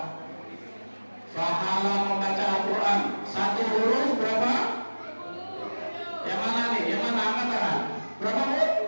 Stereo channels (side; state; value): both; inverted; correlation -1.00